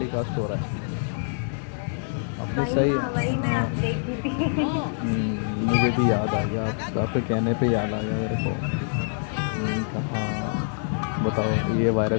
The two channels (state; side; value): silent; right; digital silence